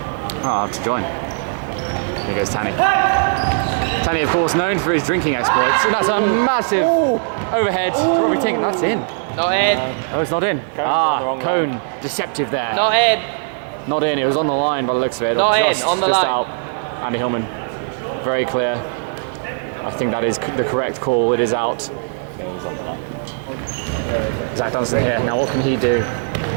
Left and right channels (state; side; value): silent; left; digital silence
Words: I'll have to join. Here goes Tanny. Tanny, of course, known for his drinking exploits. And that's a massive overhead to Robbie Tink. That's in. Not in. Oh, it's not in. on the wrong Cone. line. Deceptive there. Not in. Not in. It was on the line by the looks of it. Not Or in, on the just line. out. Andy Hillman. Very clear. I think that is the correct call. It is out. It was on the line. Zach Dunstan here. Now, what can he do?